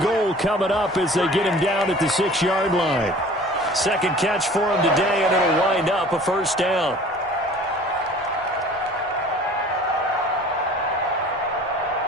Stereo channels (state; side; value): normal; both; correlation 0.46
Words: goal coming up as they get him down at the 6-yard line. Second catch for him today, and it'll wind up a first down.